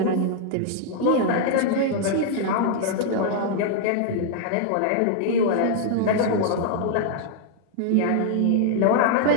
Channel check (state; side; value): different; both; correlation 0.00